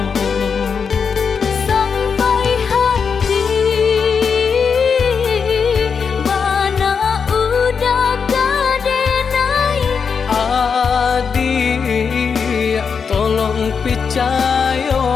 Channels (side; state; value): right; quieter; 6.0 dB